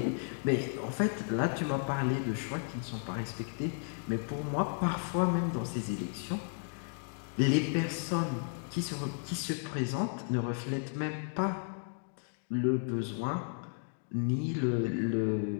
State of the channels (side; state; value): right; silent; 55 dB below the other